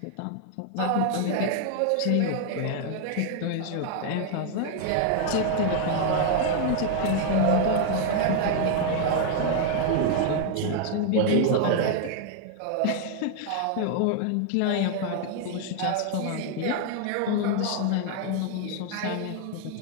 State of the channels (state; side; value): different; both; correlation 0.00